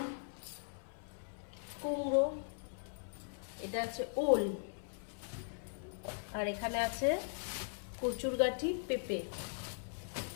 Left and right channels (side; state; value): right; silent; 51 dB below the other